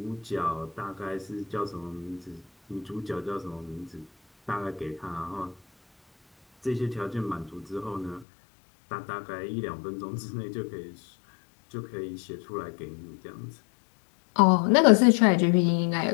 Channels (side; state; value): right; drops out; at 8.2 s